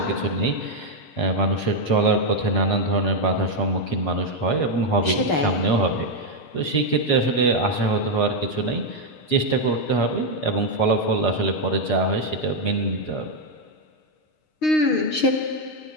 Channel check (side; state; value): right; late; 6.5 ms